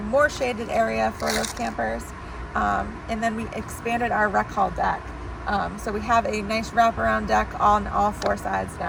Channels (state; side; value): identical; both; correlation 1.00